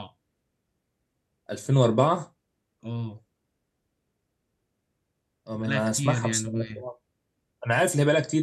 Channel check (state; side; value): identical; both; correlation 1.00